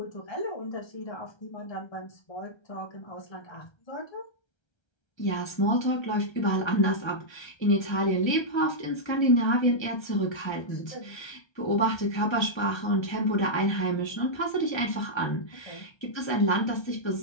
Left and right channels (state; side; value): late; right; 1.3 ms